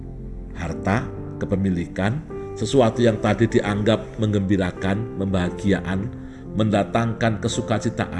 Harta, kepemilikan, sesuatu yang tadi dianggap menggembirakan, membahagiaan, mendatangkan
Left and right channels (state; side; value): identical; both; correlation 1.00